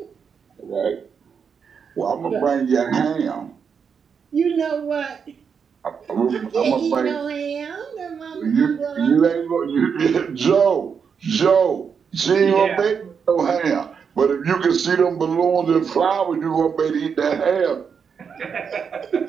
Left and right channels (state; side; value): quieter; left; 6.5 dB